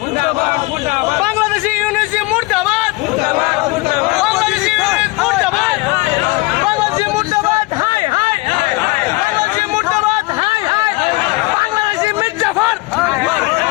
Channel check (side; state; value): right; quieter; 23.2 dB